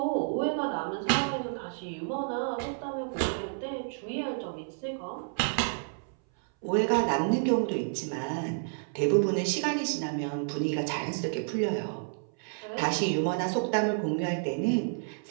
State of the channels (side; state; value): left; silent; 58 dB below the other